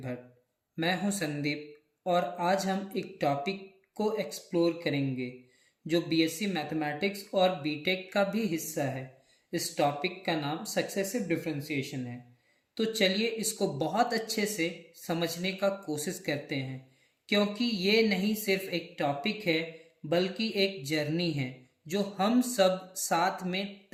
मैं हूं संदीप और आज हम एक टॉपिक को एक्सप्लोर करेंगे जो बीएससी मैथमेटिक्स और बीटेक का भी हिस्सा है। इस टॉपिक का नाम सक्सेसिव डिफरेंशिएशन है। तो चलिए इसको बहुत अच्छे से समझने का कोशिश करते हैं, क्योंकि ये नहीं सिर्फ एक टॉपिक है बल्कि एक जर्नी है जो हम सब साथ में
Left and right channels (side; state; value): both; identical; correlation 1.00